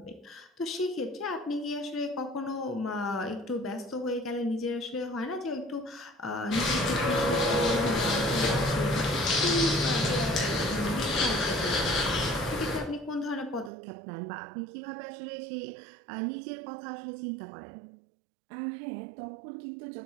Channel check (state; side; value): drops out; left; at 13.7 s